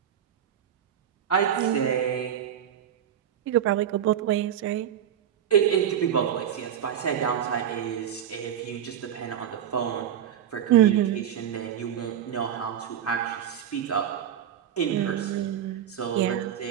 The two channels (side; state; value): left; quieter; 9.6 dB